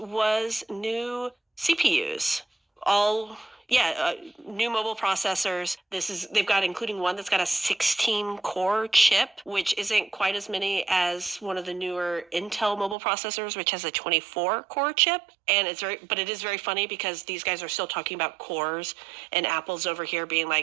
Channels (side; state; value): left; drops out; at 13.0 s